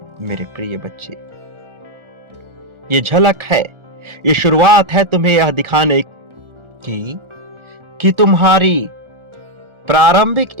मेरे प्रिय बच्चे, ये झलक है, ये शुरुआत है तुम्हें यह दिखाने की कि तुम्हारी प्रारंभिक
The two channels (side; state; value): left; late; 1.4 ms